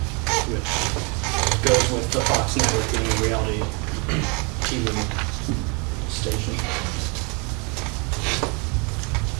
which goes with the Fox network being a reality TV station.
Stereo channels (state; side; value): quieter; left; 32.2 dB